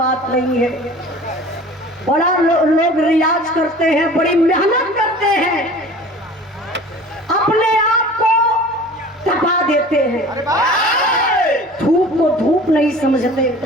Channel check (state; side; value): normal; both; correlation 0.43